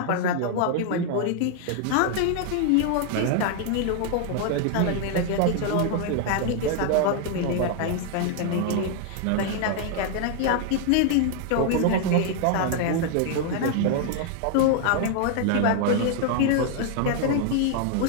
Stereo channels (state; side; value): different; both; correlation 0.00